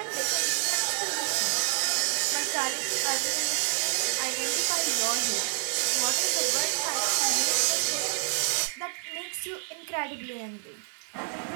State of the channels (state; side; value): silent; left; digital silence